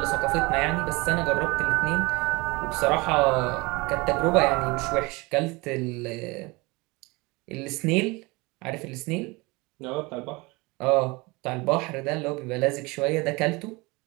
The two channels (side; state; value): left; quieter; 24.9 dB